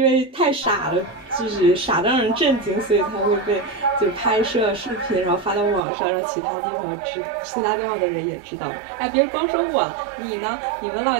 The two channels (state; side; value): drops out; left; at 5.8 s